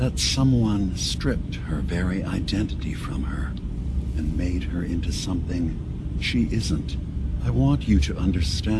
someone stripped her very identity from her and made her into something she isn't. I want you to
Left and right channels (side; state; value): both; identical; correlation 1.00